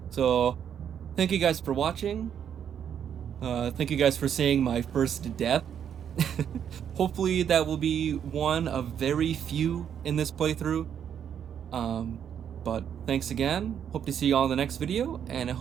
So, thank you guys for watching. Thank you guys for seeing my first death. Hopefully that will be one of very few in this playthrough. But thanks again. Hope to see you all in the next video, and I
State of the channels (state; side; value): quieter; left; 8.7 dB